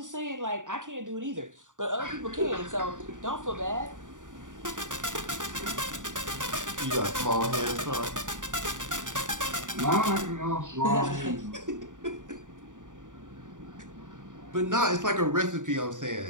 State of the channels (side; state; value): left; late; 0.87 ms